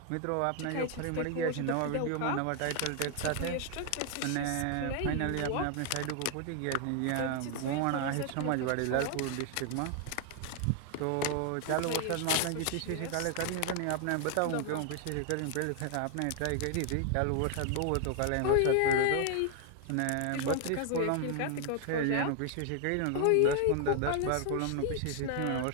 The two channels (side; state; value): both; different; correlation 0.00